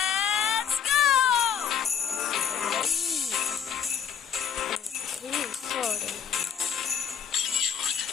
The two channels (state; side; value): quieter; right; 8.1 dB